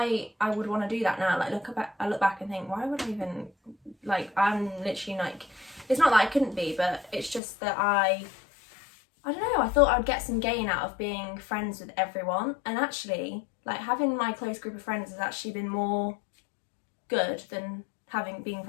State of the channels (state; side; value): drops out; right; at 7.4 s